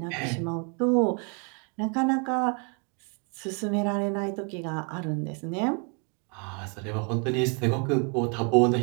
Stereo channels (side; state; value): left; quieter; 34.9 dB